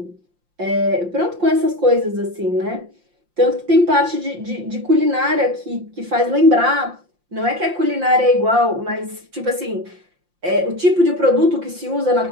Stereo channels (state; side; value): late; left; 5.7 ms